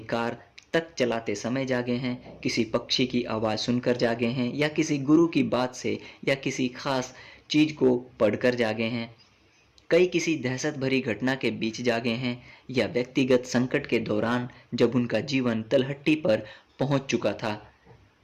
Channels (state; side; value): identical; both; correlation 1.00